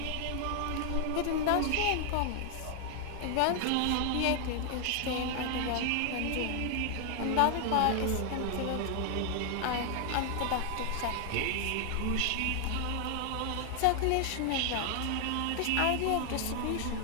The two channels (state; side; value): different; both; correlation 0.00